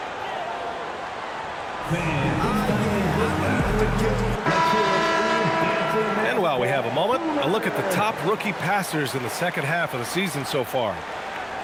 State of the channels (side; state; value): both; identical; correlation 1.00